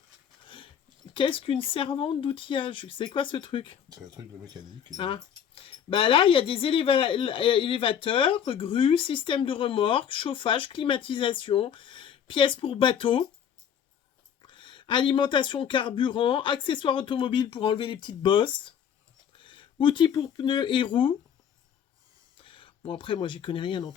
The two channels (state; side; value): quieter; right; 8.5 dB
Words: Qu'est-ce qu'une servante d'outillage? C'est quoi ce truc? C'est un truc de mécanique. Ah. Bah là, il y a des élévateurs, grues, système de remorque, chauffage, climatisation, pièces pour bateau, alimentation carburant, accessoires automobiles pour enlever les petites bosses, outils pour pneus et roues. Bon, après, moi, j'y connais rien dans